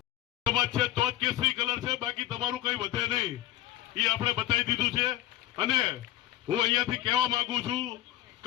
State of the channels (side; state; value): right; quieter; 14.1 dB